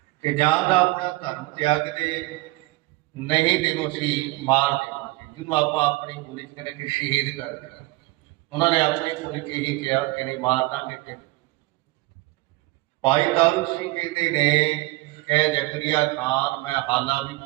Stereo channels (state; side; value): quieter; left; 21.4 dB